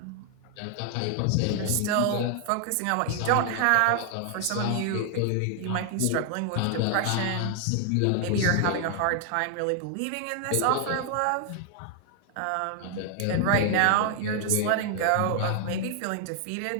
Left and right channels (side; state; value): both; different; correlation 0.00